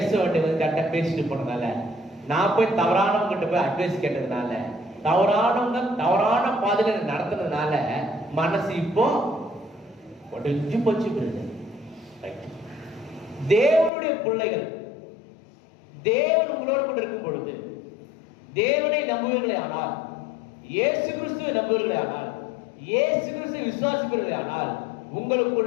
வேண்டியவங்க வந்து கரெக்டா பேசிட்டு போனதால, நான் போய் தவறானவங்க கிட்ட போய் அட்வைஸ் கேட்டதுனால, தவறானவங்க தவறான பாதையில நடத்துனதுனால மனசு இப்போ உடைஞ்சு போச்சு பிரதர். தேவனுடைய பிள்ளைகள், தேவன் உங்களோடு கூட இருக்கும் பொழுது, தேவனை நம்புவீர்களே ஆனால், இயேசு கிறிஸ்துவை நம்புவீர்களே ஆனால், இயேசு கிறிஸ்துவை விசுவாசிப்பீர்களே ஆனால்,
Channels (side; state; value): right; drops out; at 13.9 s